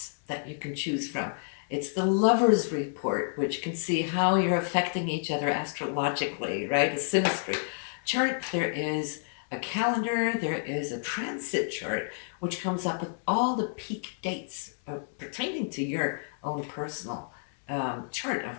that you can choose from. It's the Lover's Report, which can see how you're affecting each other astrologically, right? A synastry chart. There is a calendar, there is a transit chart, which comes up with all the peak dates pertaining to your own personal chart,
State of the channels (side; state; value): right; silent; digital silence